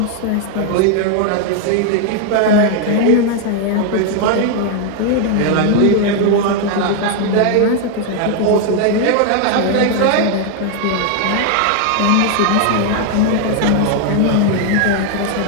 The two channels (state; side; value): different; both; correlation 0.00